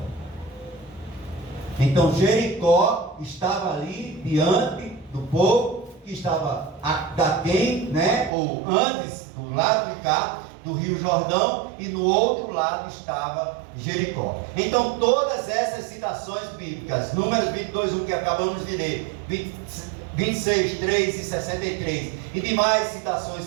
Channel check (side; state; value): left; drops out; at 8.3 s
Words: Então Jericó estava ali diante do povo que estava daquém, né? Ou antes, do lado de cá, do rio Jordão, e no outro lado estava Jericó. Então todas essas citações bíblicas, Números 22:1 que acabamos de ler, 26:3 e 63, e demais citações